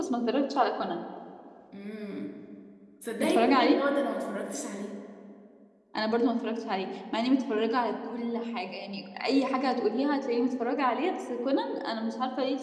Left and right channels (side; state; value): both; identical; correlation 1.00